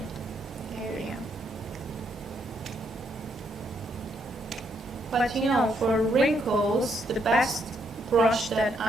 area. But you know, for wrinkles, the best brush that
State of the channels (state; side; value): normal; both; correlation 0.75